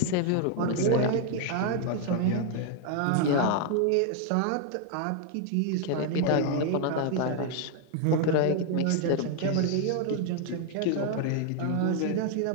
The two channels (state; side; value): different; both; correlation 0.00